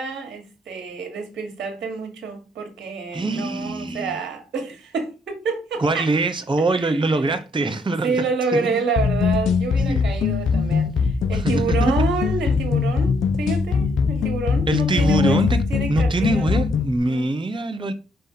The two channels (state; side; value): normal; both; correlation 0.70